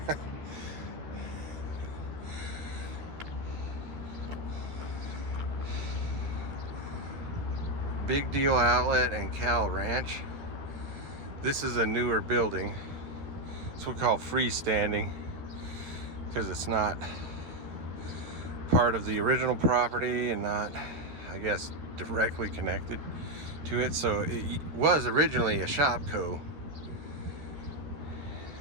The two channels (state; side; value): late; left; 13 ms